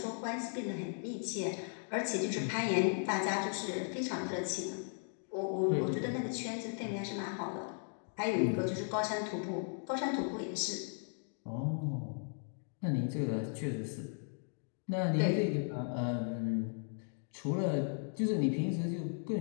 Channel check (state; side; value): silent; right; 53 dB below the other